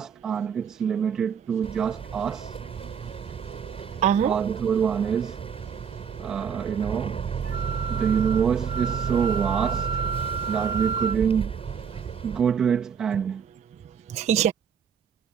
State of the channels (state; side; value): quieter; left; 7.1 dB